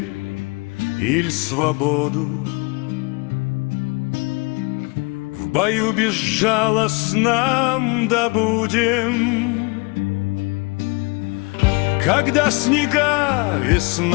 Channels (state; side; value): quieter; right; 28.5 dB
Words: или свободу. В бою безжалостном добудем. Когда снега